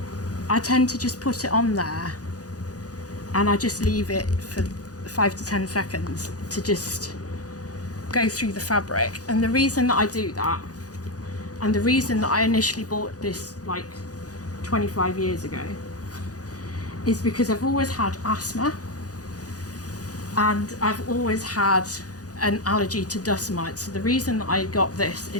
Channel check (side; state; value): right; late; 0.67 ms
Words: I tend to just put it on there and I just leave it for 5 to 10 seconds to just go through the fabric. And the reason that I do that, and the reason that I initially bought this like 25 years ago, is because I've always had asthma, and I've always had an allergy to dust mites. So the reason that I got this